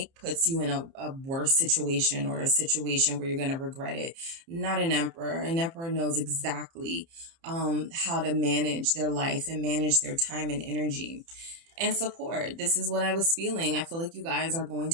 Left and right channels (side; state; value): left; late; 30 ms